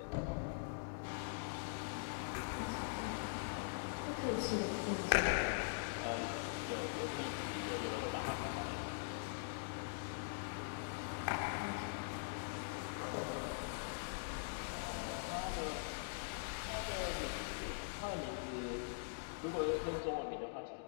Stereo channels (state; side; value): silent; right; digital silence